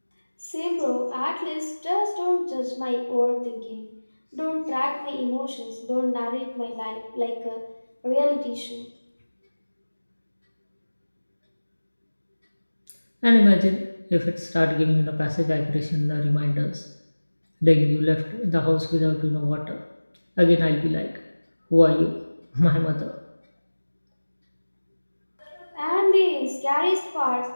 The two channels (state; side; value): inverted; both; correlation -1.00